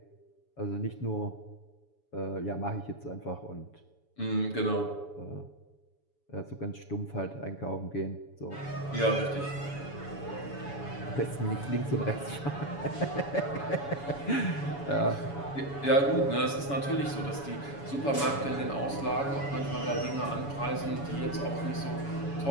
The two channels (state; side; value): late; right; 7.1 ms